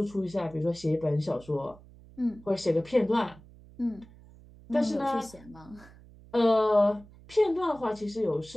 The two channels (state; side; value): noise; right; hum, 22 dB below the sound